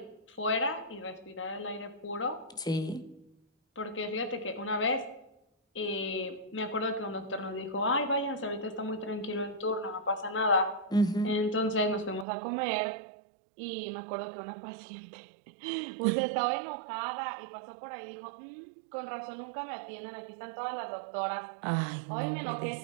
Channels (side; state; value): left; drops out; at 12.2 s